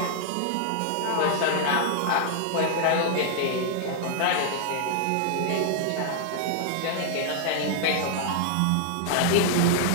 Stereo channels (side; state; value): both; different; correlation 0.00